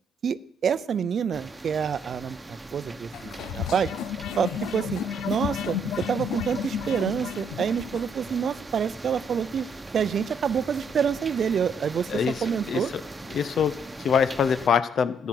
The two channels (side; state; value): both; normal; correlation 0.69